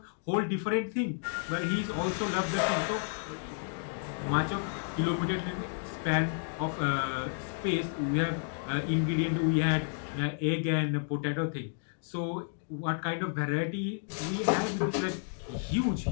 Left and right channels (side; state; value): right; silent; digital silence